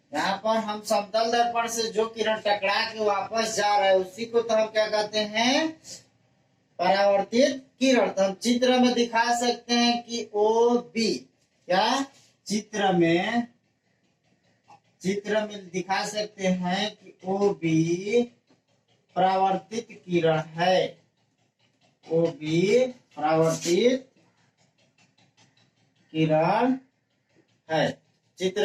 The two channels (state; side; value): identical; both; correlation 1.00